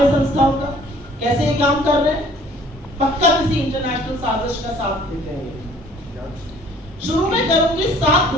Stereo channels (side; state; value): both; normal; correlation 0.55